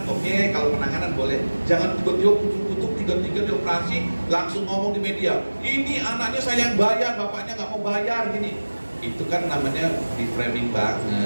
oke, kalau penanganan boleh, jangan tiba-tiba kutuk-kutuk tiga-tiga dioperasi langsung ngomong di media, ini anaknya saya yang bayar, bapaknya nggak mau bayar gini. Itu kan namanya di framing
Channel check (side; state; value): both; inverted; correlation -1.00